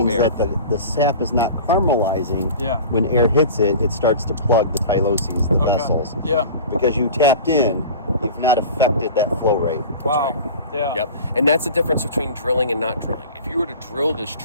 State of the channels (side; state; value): both; inverted; correlation -0.37